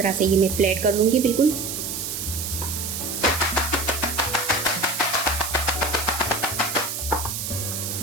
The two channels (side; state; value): right; noise; hiss, 4 dB below the sound